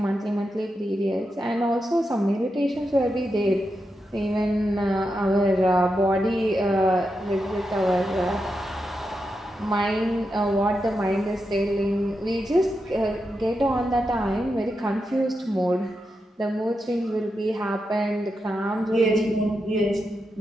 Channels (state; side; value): normal; both; correlation 0.87